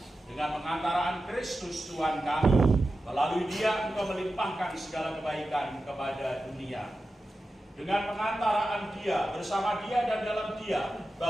dengan pengantaraan Kristus Tuhan kami. Melalui Dia Engkau melimpahkan segala kebaikan kepada dunia. Dengan pengantaraan Dia, bersama Dia dan dalam Dia,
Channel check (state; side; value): normal; both; correlation 0.92